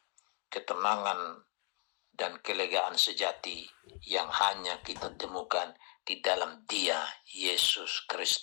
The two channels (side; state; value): right; quieter; 38.7 dB